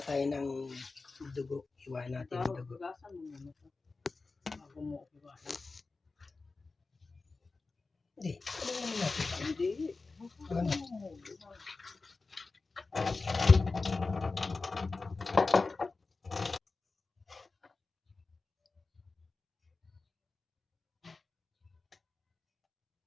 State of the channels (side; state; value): right; quieter; 3.9 dB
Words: tayo ng dugo. Iwa natin ang dugo. Gasan mo muna ito. Bago mo iwasan. Hindi. Ano naman natin? Hindi. Ano?